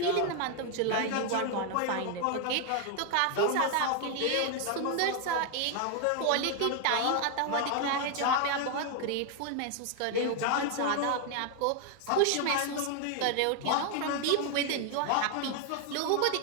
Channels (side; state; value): both; different; correlation 0.00